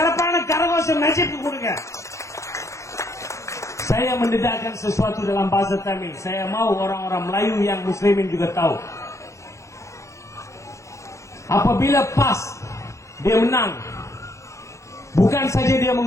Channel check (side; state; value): right; late; 0.15 ms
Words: கரகோஷம் நஜீப்க்கு கொடுங்க. Saya mendedahkan sesuatu dalam bahasa Tamil. Saya mau orang-orang Melayu yang Muslimin juga tahu. Apabila PAS dia menang, bukan saja dia